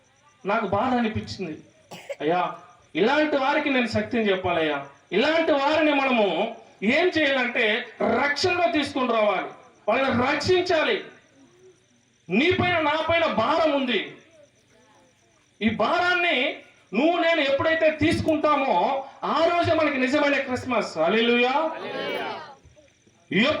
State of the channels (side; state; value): both; identical; correlation 1.00